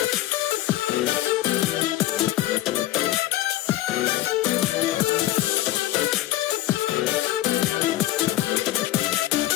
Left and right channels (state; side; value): quieter; right; 15.4 dB